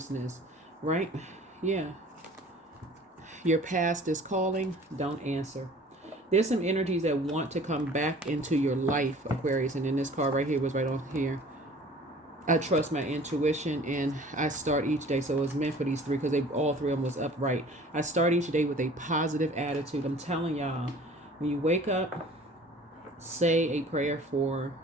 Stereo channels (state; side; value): normal; both; correlation 0.48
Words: right? Yeah. Your past is calling. Don't answer. There's some energies that want to come back into your life, Aquarius. And then this card right here was right on here. I trust my intuition and I start each day. So it was meant for these three because all three of them was upright. I start each day with a positive attitude. I'm telling y'all, when you wake up, say a prayer for